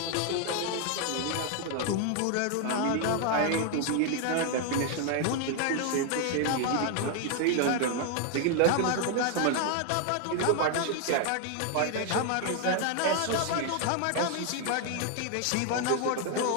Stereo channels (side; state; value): both; different; correlation 0.00